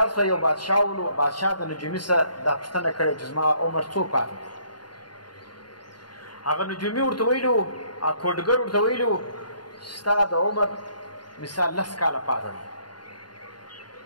شوه، یو بادشاه ولو، بادشاه د نجومي څخه دا پوښتنه کړې چې زما عمر څو پاتې دی. هغه نجومي ورته ویلي وو، هغه کوډګر ورته ویلي وو ستا د عمر مثال 10 کاله پاتې دی.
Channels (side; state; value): right; late; 0.71 ms